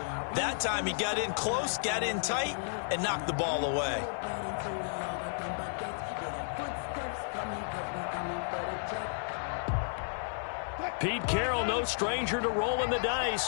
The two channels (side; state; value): right; silent; 56 dB below the other